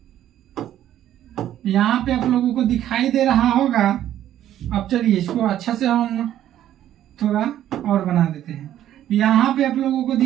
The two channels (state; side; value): quieter; left; 11.8 dB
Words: पे आप लोगों को दिखाई दे रहा होगा। अब चलिए इसको अच्छा से हम थोड़ा और बना देते हैं। यहाँ पे आप लोगों को